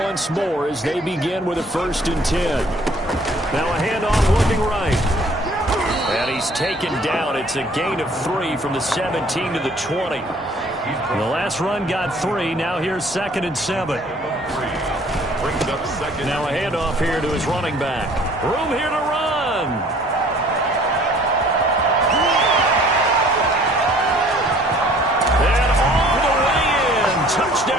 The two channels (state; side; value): normal; both; correlation 0.56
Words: more as they begin with a 1st and 10. Now a handoff looking right. And he's taken down. It's a gain of 3 from the 17 to the 20. The last run got 3. Now here's 2nd and 7. Now a handoff here to his running back. Room here to run. And all the way in.